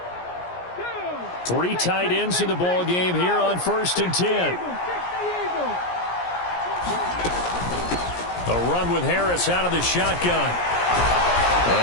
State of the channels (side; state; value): right; late; 17 ms